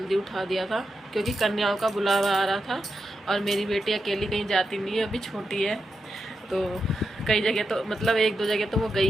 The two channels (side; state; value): both; normal; correlation 0.87